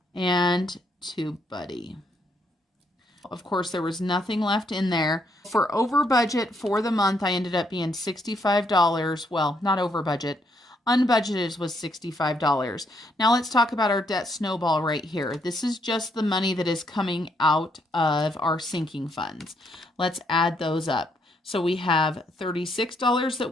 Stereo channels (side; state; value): both; normal; correlation 0.73